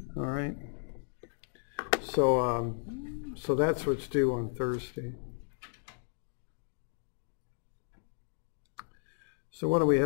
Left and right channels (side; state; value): right; silent; digital silence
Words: All right. So, so that's what's due on Thursday. So why don't we